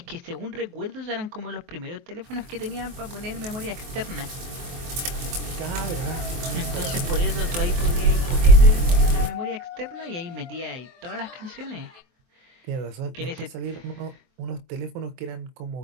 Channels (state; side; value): late; left; 23 ms